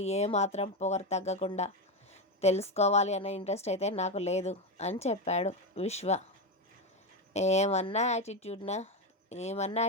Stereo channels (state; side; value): normal; both; correlation 0.12